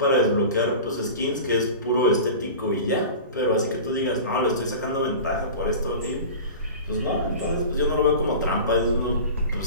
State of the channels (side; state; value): both; inverted; correlation -0.35